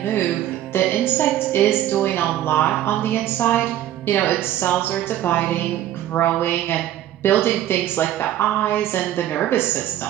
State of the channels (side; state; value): left; quieter; 12.4 dB